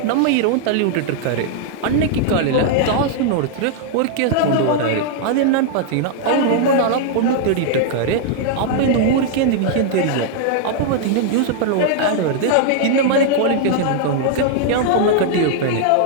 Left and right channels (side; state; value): both; different; correlation 0.00